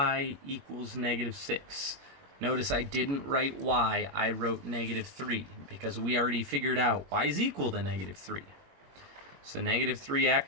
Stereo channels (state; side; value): late; left; 21 ms